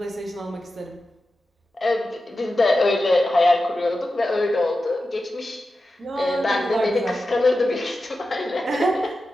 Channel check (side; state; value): both; normal; correlation 0.92